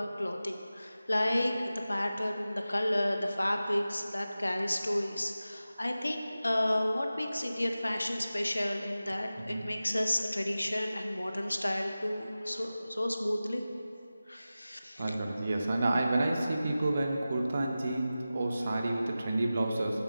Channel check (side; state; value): both; inverted; correlation -0.95